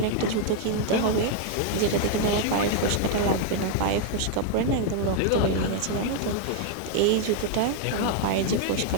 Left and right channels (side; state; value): both; different; correlation 0.00